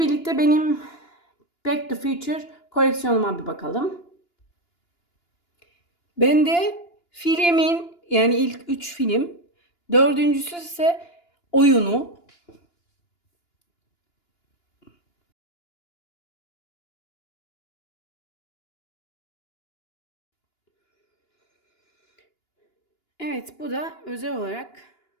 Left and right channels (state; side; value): late; right; 2.9 ms